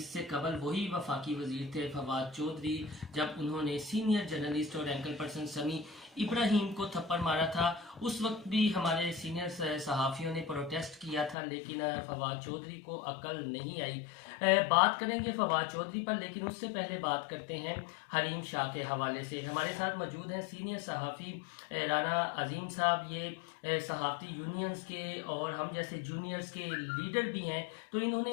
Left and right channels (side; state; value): right; drops out; at 11.4 s